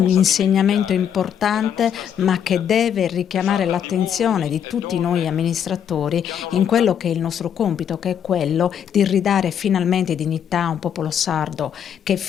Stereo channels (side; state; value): right; quieter; 8.7 dB